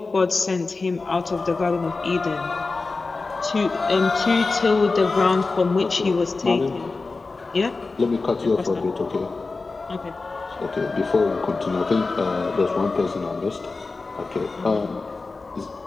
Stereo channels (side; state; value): right; quieter; 3.8 dB